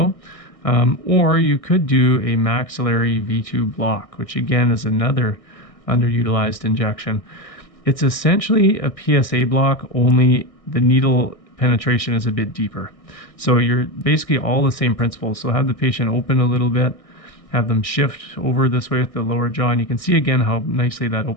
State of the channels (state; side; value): late; right; 1.6 ms